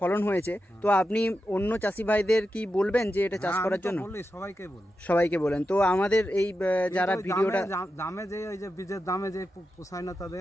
হয়েছে, তো আপনি অন্য চাষি ভাইদের কি বলবেন যে এটা চাষ করার জন্য? সবাইকে বলেন। তো আমাদের এই যারা ভিডিওটা দামে যে ওই যে বীজের দামে যে পোষায় না,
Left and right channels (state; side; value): normal; both; correlation 0.89